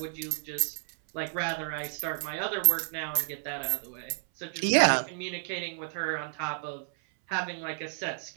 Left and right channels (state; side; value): silent; left; 57 dB below the other